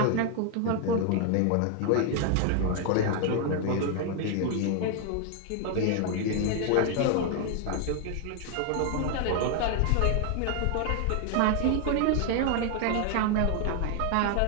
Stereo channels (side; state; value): both; different; correlation 0.00